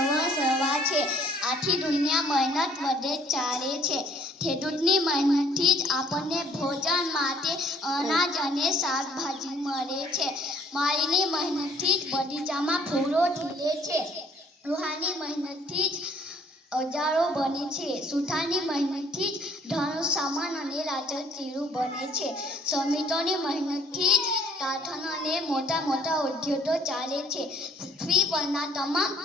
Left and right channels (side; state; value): both; normal; correlation 0.59